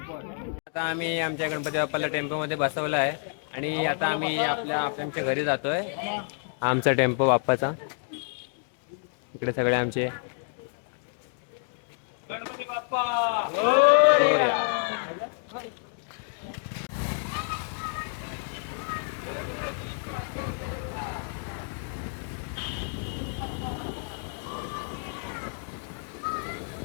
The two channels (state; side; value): silent; right; 57 dB below the other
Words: आता आम्ही आमच्या गणपती बाप्पाला टेम्पोमध्ये बसवलं आहे. आणि आता आम्ही आमच्या घरी जातोय. आमचा टेम्पो बाप्पाचा. इकडे सगळे आमचे गणपती बाप्पा.